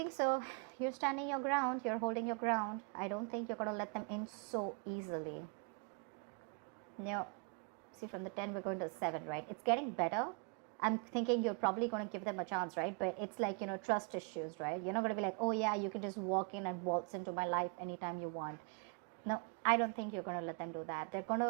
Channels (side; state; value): left; quieter; 37.5 dB